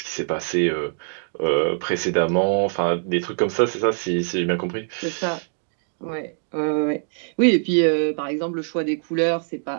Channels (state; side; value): silent; left; digital silence